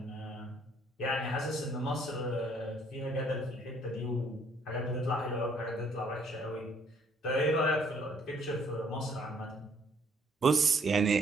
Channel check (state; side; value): normal; both; correlation 0.64